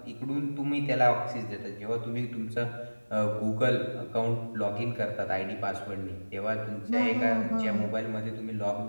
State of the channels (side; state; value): both; inverted; correlation -1.00